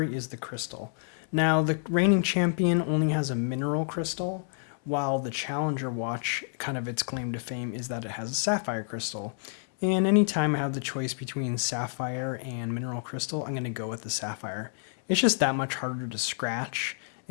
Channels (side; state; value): right; silent; 59 dB below the other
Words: is the crystal. Now, the reigning champion only has a mineral crystal, while the Challenger watch, kind of its claim to fame, is that it has a sapphire crystal. And anytime I have the choice between sapphire and mineral crystal, I'm going to go with the sapphire. It's just that much harder to scratch,